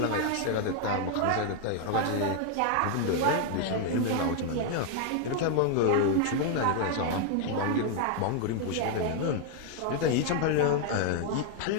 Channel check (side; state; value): both; different; correlation 0.00